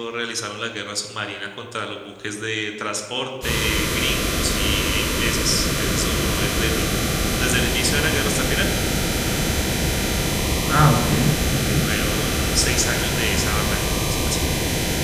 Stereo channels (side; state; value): both; identical; correlation 1.00